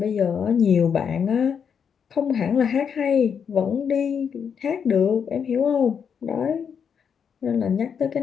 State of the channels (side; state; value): right; quieter; 7.1 dB